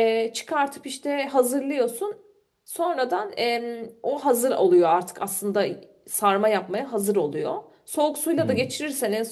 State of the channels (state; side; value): identical; both; correlation 1.00